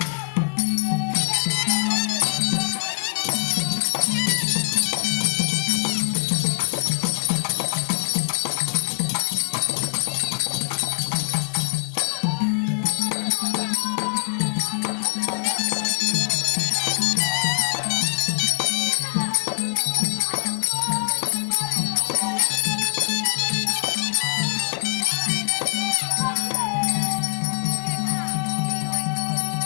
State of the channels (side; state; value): right; silent; digital silence